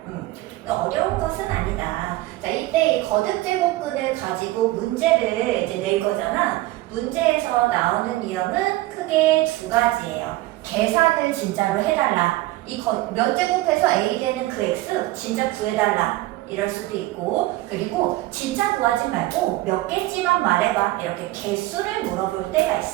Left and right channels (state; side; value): quieter; left; 17.9 dB